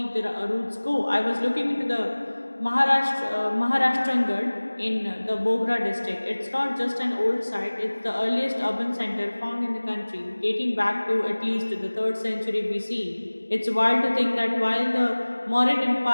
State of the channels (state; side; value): inverted; both; correlation -1.00